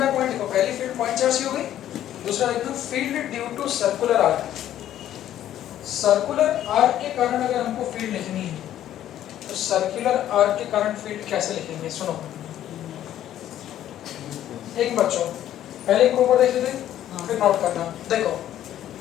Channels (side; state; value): right; quieter; 11.8 dB